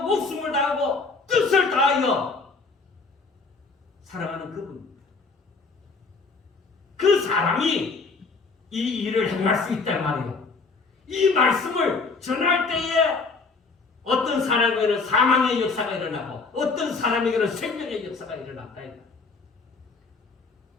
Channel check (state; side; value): quieter; right; 4.3 dB